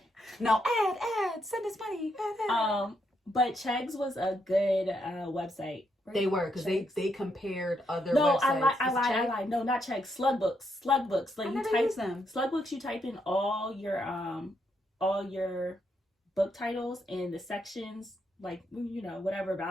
No, ad. Send us money. Ad. But Chegs was a good website. They were, because they compared other websites. No, I lied. No, not Chegs. Slug books. Like, I you never type use them. Slug books. You type in all your book titles and the sections, like, whatever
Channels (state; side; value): normal; both; correlation 0.78